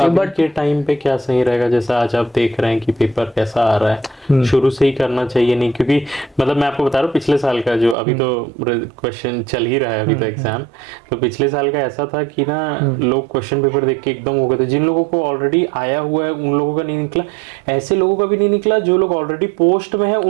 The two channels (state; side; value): drops out; left; at 8.0 s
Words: है। बट के टाइम पे क्या सही रहेगा, जैसा आज आप देख रहे हैं कि पेपर कैसा आ रहा है, शुरू से ही करना चाहिए नहीं? क्योंकि मतलब मैं आपको बता रहा हूँ पिछले साल का जो अभी तो क्वेश्चन चल ही रहा है अभी तो एग्जाम, तो पिछले साल का ऐसा था कि ना लोग क्वेश्चन पेपर देख के एकदम हो गए थे। जिन लोगों को ऑलरेडी आया हुआ है उन लोगों का नहीं निकला, ऐसे लोगों का भी नहीं निकला, जो लोग ऑलरेडी पोस्ट में है